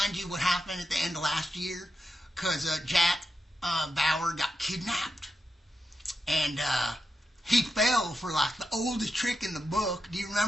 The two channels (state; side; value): normal; both; correlation 0.88